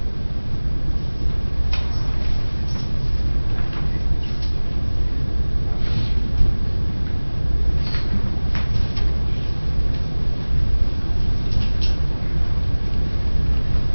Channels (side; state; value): both; inverted; correlation -1.00